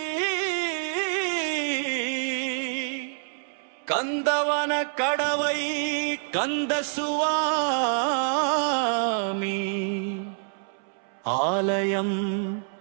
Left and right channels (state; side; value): silent; left; 60 dB below the other